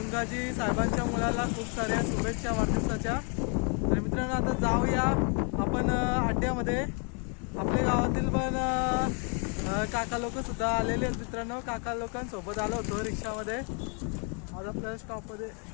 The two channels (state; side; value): quieter; right; 38.6 dB